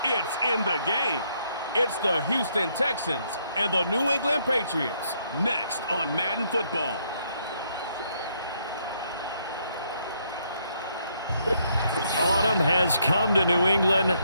it's in the game. It's the Houston Texans and the New England Patriots. Next on Madden Football. Autumn has come to New England.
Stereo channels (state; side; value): inverted; both; correlation -0.72